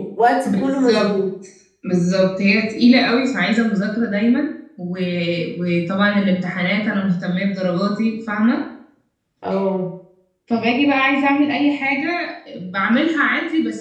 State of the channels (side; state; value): both; identical; correlation 1.00